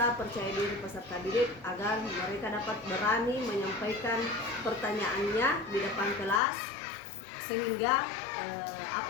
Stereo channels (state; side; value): drops out; right; at 6.4 s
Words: percaya diri peserta didik agar mereka dapat berani menyampaikan pertanyaannya di depan kelas, sehingga